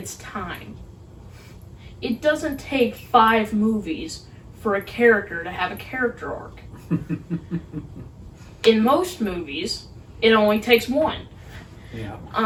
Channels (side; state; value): both; identical; correlation 1.00